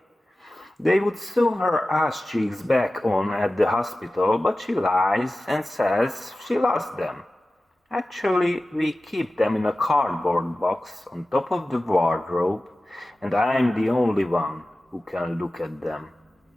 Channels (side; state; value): both; normal; correlation 0.96